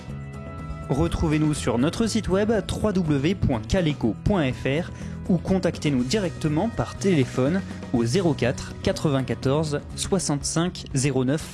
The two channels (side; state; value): both; identical; correlation 1.00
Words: Retrouvez-nous sur notre site web www.caleco.fr ou contactez-nous directement par téléphone au 04 94 65